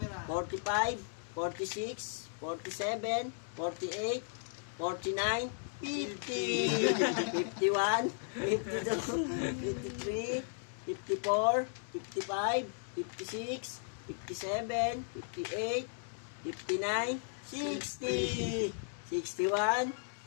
45, 46, 47, 48, 49, 50, 51, 52, 53, 54, 55, 56, 57, 58, 59, 60, 61,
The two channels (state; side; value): silent; right; digital silence